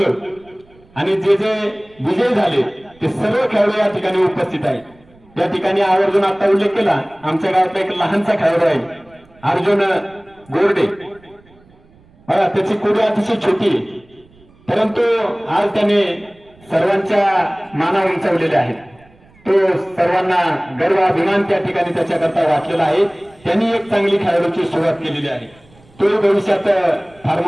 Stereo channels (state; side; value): noise; right; rumble, 29 dB below the sound